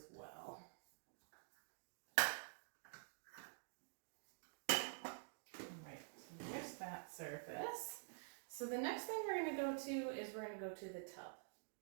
well. Alright, so there's that surface. So the next thing we're going to go to is the tub.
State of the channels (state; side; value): silent; left; digital silence